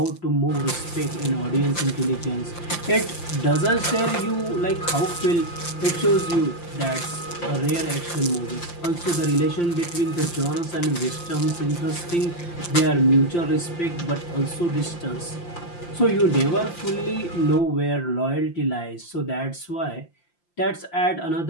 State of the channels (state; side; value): late; right; 5.8 ms